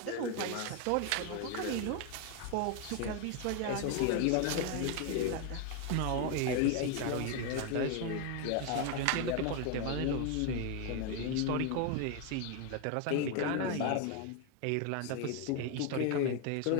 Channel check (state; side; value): different; both; correlation 0.01